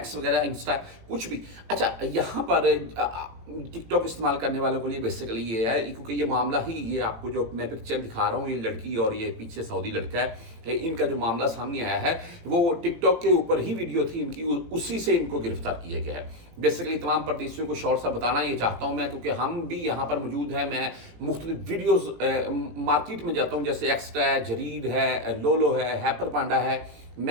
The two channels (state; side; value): late; left; 18 ms